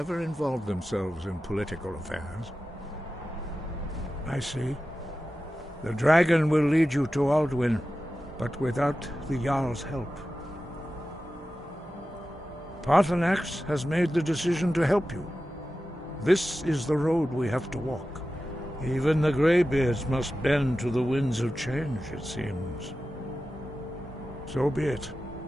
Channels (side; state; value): both; normal; correlation 0.93